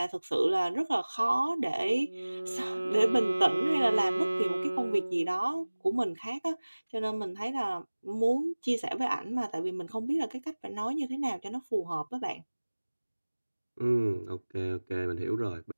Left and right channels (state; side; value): inverted; both; correlation -1.00